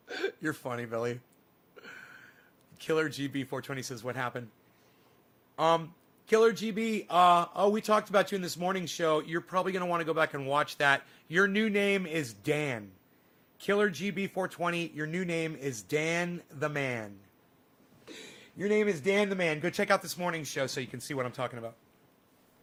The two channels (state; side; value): identical; both; correlation 1.00